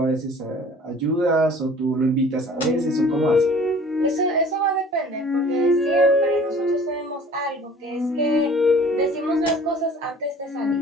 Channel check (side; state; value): both; normal; correlation 0.49